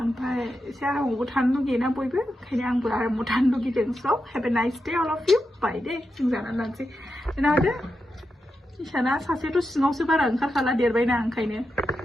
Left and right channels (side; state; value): both; normal; correlation 0.88